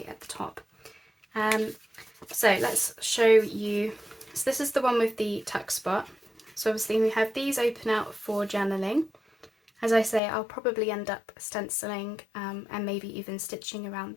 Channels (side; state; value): right; drops out; at 10.2 s